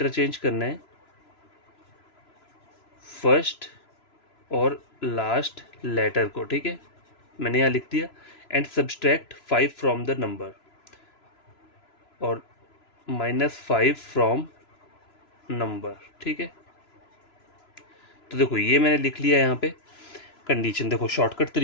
करना है फर्स्ट और लास्ट लेटर को। ठीक है, मैंने यहाँ लिख दिया। And subtract 5 from the number, और -5 फ्रॉम नंबर। ठीक है, तो देखो ये मैंने लिख लिया यहाँ पे कंडीशन। देखो शॉर्टकट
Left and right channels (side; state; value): right; late; 3.0 ms